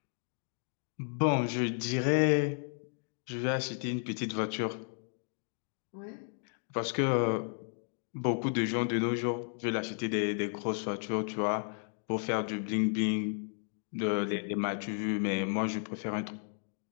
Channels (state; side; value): silent; right; 55 dB below the other